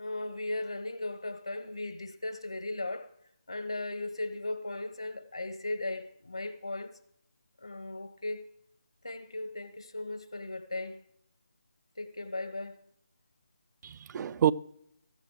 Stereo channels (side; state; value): both; inverted; correlation -0.76